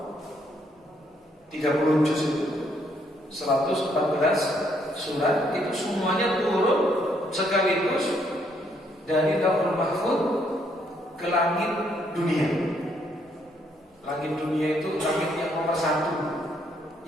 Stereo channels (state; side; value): normal; both; correlation 0.71